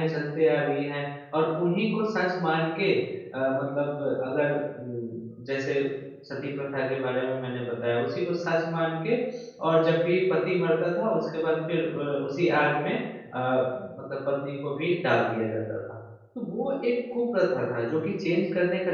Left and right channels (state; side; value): identical; both; correlation 1.00